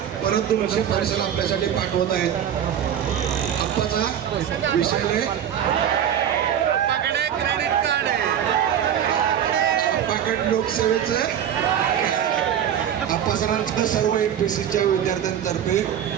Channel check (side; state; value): left; quieter; 9.5 dB